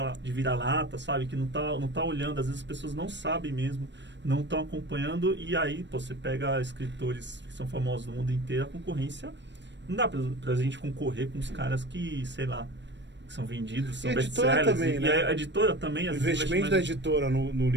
vira-lata, sabe? Que não tá olhando, às vezes as pessoas não sabem mesmo, não estão acompanhando, e aí, você pega escritores que são famosos no mundo inteiro, a concorrência, não dá pra gente concorrer com os caras que, sei lá, são vendidos, são best-sellers. Também, né? E a editora também... O investimento da editora no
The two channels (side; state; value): left; late; 0.52 ms